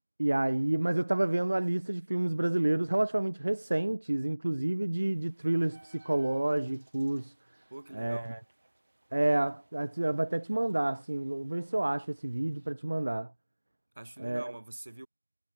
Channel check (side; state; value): both; inverted; correlation -1.00